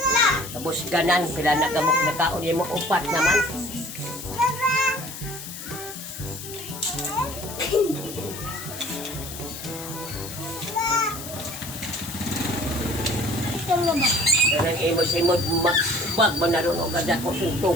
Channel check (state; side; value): noise; left; hiss, 11 dB below the sound